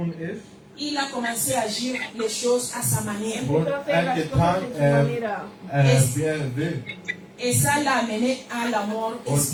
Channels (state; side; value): identical; both; correlation 1.00